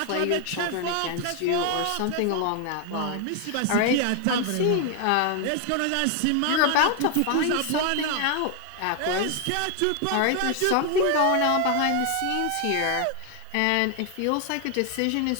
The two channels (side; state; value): both; different; correlation 0.00